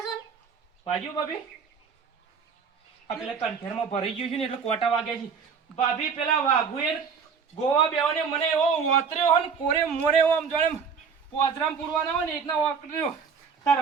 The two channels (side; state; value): left; quieter; 6.1 dB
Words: છો ને ભાગ્યું ભાભી આ પેલા કંઠેરમાં ભરાઈ ગયું છે ને એટલે કોટા વાગ્યા છે ભાભી પેલા વાઘુએ ગોવા બેવાને મને એવો વાતર્યો હોય ને કોરે મોરે એવો આમ જાણે પોજરામ પૂરવાના હોય ને એકના વાકર્યો